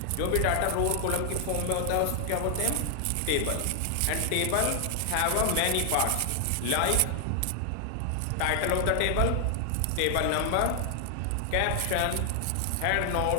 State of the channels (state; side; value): different; both; correlation 0.00